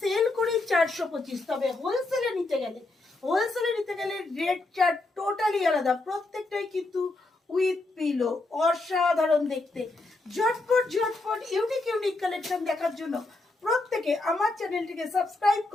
করি 425। তবে হোলসেলে নিতে গেলে রেটটা টোটালি আলাদা। প্রত্যেকটাই কিন্তু উইথ পিলো, অসাধারণ দেখতে। ঝটপট ঝটপট ইউনিক ইউনিক কালেকশন দেখার জন্য প্রত্যেকে আমার চ্যানেলটিকে সাবস্ক্রাইব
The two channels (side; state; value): right; quieter; 3.0 dB